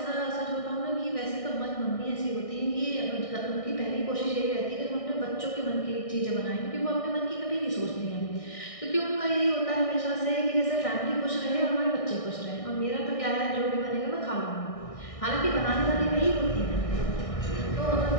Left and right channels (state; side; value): late; right; 1.6 ms